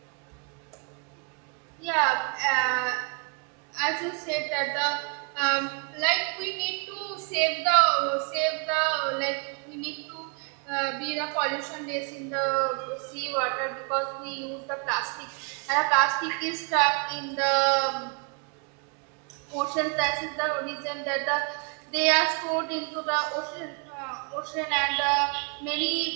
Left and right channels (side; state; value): left; quieter; 36.2 dB